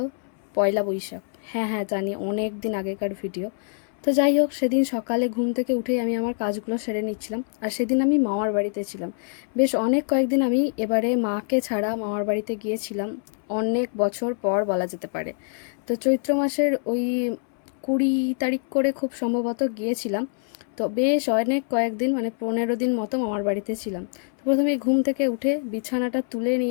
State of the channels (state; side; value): silent; right; 62 dB below the other